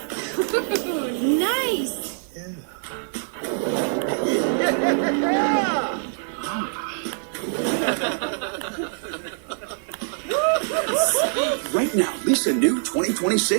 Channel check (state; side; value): silent; left; digital silence